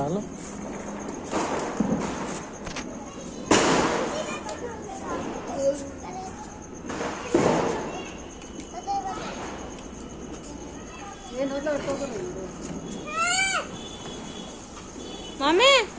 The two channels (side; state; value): both; identical; correlation 1.00